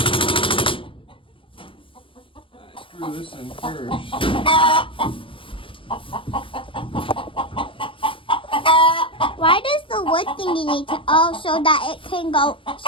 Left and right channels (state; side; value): late; right; 0.25 ms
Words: Screw this in first. Why does the wood thingy need to? Oh, so that it can go,